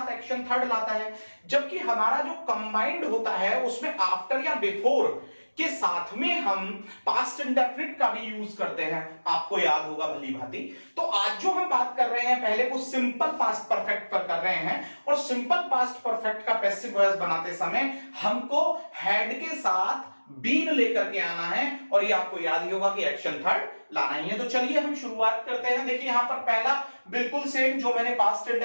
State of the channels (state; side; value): inverted; both; correlation -1.00